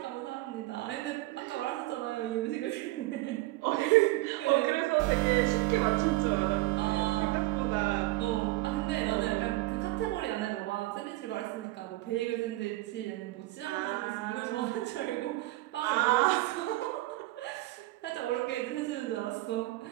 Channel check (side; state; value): left; quieter; 19.2 dB